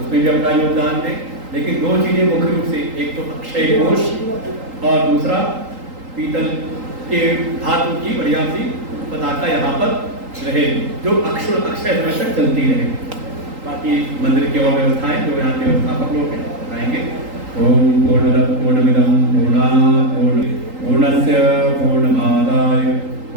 भी अपना योगदान दें। लेकिन दो चीज़ें मुख्य रूप से, एक तो अक्षय कोष और दूसरा पीतल के धातु की बढ़िया सी पताका यहाँ पर रहे, जो अक्षय समय तक चलती रहे। बाकी मंदिर की और व्यवस्थाएं जो यहाँ के व्यवस्थापक लोग हैं बताएंगे। ओम पूर्णमिदं पूर्णस्य पूर्णमादाय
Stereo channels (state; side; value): late; left; 3.8 ms